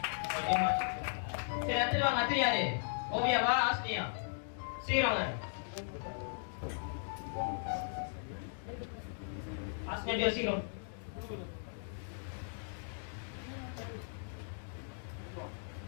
சரி, அடுத்து வாங்க. அடுத்து யாரு? ஓவியாவா ஆஸ்திரியா? சீக்கிரம் ஆஸ்திரியா சீக்கிரம்.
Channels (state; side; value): silent; right; digital silence